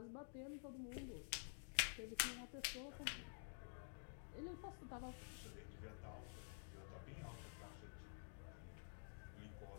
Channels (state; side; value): silent; right; digital silence